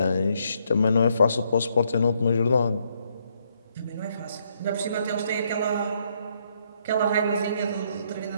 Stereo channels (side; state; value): both; inverted; correlation -0.73